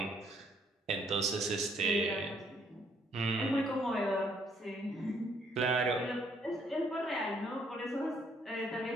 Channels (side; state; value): both; normal; correlation 0.68